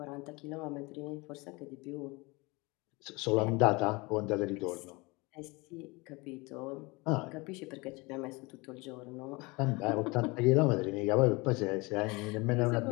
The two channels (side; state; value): right; quieter; 25.4 dB